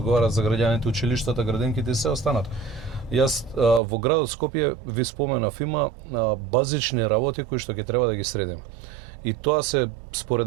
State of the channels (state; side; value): drops out; left; at 3.8 s